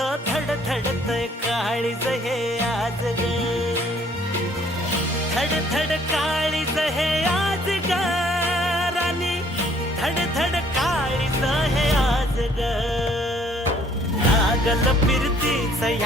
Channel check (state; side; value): normal; both; correlation 0.61